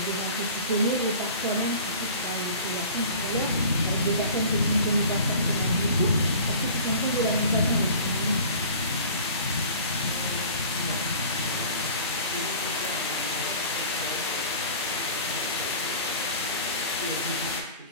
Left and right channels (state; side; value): inverted; both; correlation -0.43